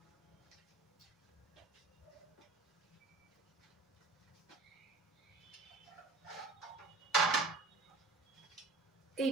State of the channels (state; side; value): quieter; left; 3.4 dB